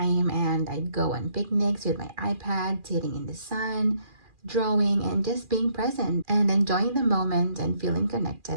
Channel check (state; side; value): late; left; 2.4 ms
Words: and I'd go on picnics with my iPad, sitting in the sun, drawing, and just being present and enjoying the moment and feeling